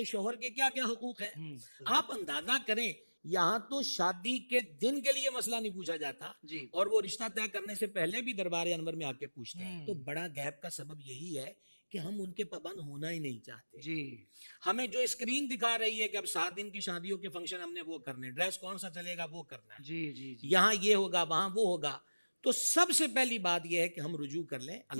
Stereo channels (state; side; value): inverted; both; correlation -1.00